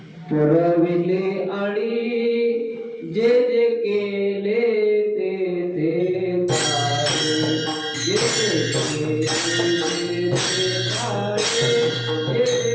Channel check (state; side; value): identical; both; correlation 1.00